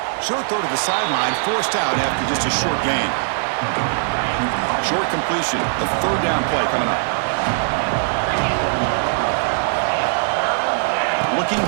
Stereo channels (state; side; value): silent; left; digital silence